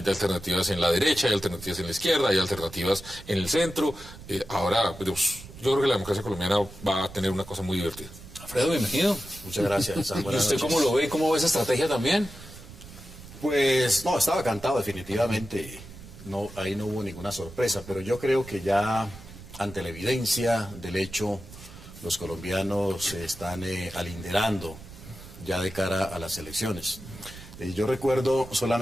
en la derecha, hay alternativas en la izquierda, hay alternativas en el centro. Ahora, pues, yo creo que la democracia colombiana va a tener una cosa muy divertida. Alfredo, bienvenido. Muchas gracias. ¿Y usted cómo lo ve? ¿Cómo ve esa estrategia también? Pues no, estaba cantado definitivamente. No, ahí no hubo ninguna sorpresa, pero yo creo que ya ante la evidencia del hecho, los colombianos se están alinderando ya de cara a las elecciones. Yo recuerdo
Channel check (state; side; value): noise; right; rumble, 16 dB below the sound